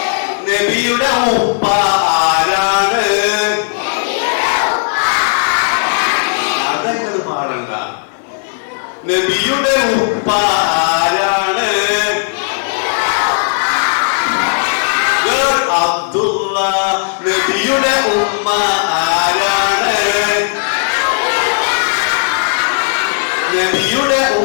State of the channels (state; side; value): silent; right; digital silence